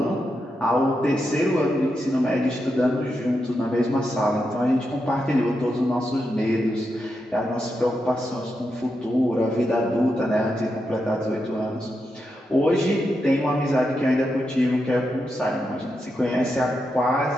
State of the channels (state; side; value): normal; both; correlation 0.85